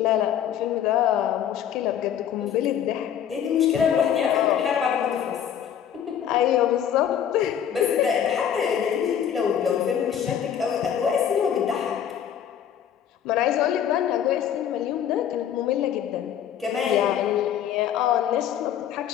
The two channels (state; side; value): quieter; right; 9.4 dB